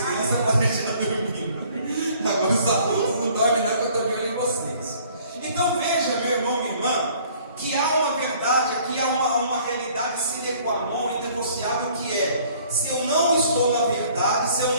podem já dormindo. Agora os adultos não dormem não, que eu estou de olho em vocês. Então veja, meu irmão, minha irmã, que há uma verdade aqui, há uma realidade sine qua non, inegociável, que é: se eu não estou na verdade, se eu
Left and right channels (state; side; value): inverted; both; correlation -0.56